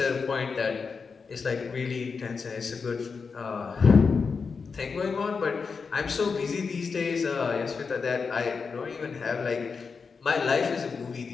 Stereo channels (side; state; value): right; quieter; 5.2 dB